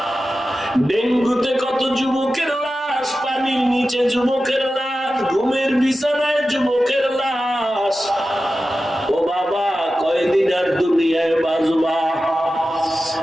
ডেঙ্গুতে কত যুবকের লাশ, পানির নিচে যুবকের লাশ, ঘুমের বিছানায় যুবকের লাশ। ও বাবা, কয়দিন আর দুনিয়ায় বাঁচবা?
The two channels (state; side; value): normal; both; correlation 0.93